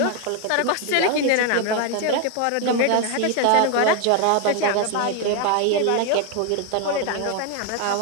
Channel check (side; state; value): both; different; correlation 0.01